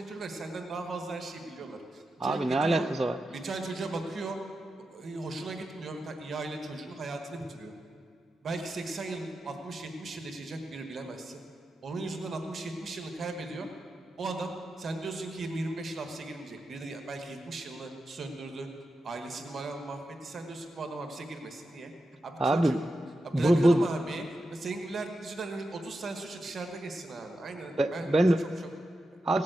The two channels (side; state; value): both; normal; correlation 0.89